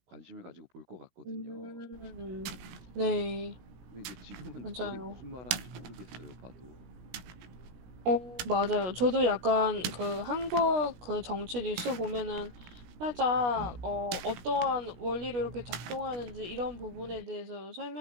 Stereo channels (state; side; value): late; left; 17 ms